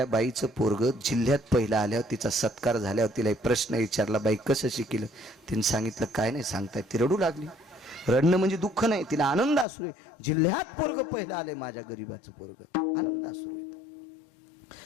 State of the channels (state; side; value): drops out; right; at 9.7 s